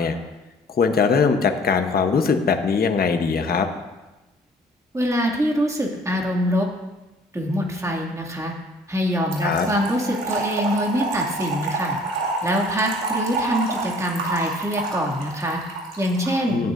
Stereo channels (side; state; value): both; normal; correlation 0.53